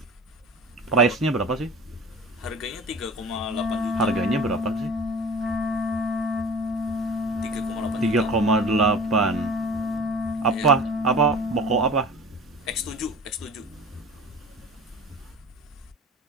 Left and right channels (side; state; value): both; normal; correlation 0.40